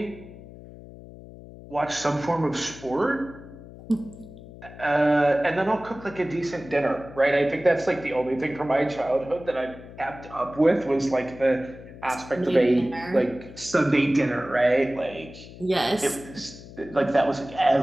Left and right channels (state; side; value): noise; left; hum, 17 dB below the sound